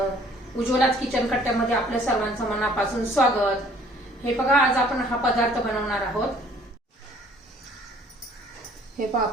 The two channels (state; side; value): normal; both; correlation 0.57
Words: उज्ज्वलाच kitchen कट्ट्यामध्ये आपल्या सर्वांचं मनापासून स्वागत. हे बघा, आज आपण हा पदार्थ बनवणार आहोत. हे पहा,